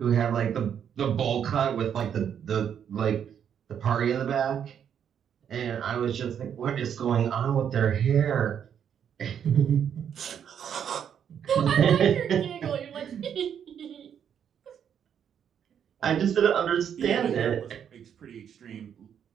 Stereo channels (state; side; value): quieter; left; 8.5 dB